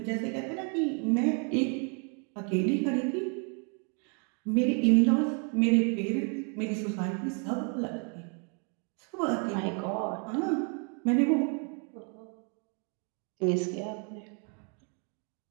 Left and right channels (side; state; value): left; quieter; 38.0 dB